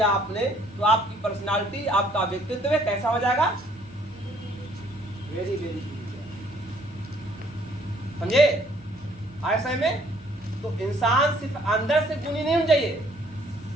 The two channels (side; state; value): both; normal; correlation 0.62